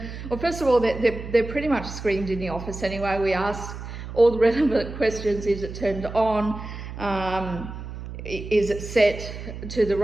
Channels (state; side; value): noise; right; hum, 10 dB below the sound